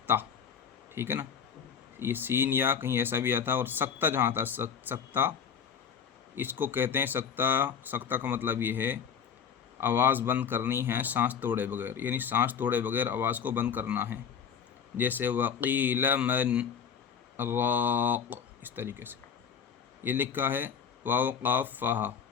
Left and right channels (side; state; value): right; quieter; 7.3 dB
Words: ٹھیک ہے نا۔ یہ سین یا کہیں ایسا بھی آتا، اور سکتہ جہاں آتا سکتہ، اس کو کہتے ہیں سکتہ۔ سکتہ کا مطلب یہ ہے آواز بند کرنی ہے سانس توڑے بغیر، یعنی سانس توڑے بغیر آواز کو بند کرنا ہے، جیسے وقیل من راق، اس طریقے سے یہ لکھا ہے۔ واو قاف فا،